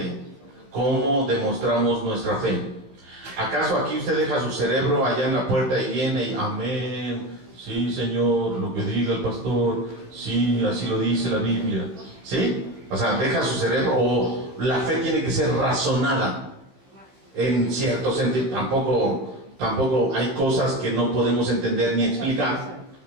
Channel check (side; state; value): left; late; 15 ms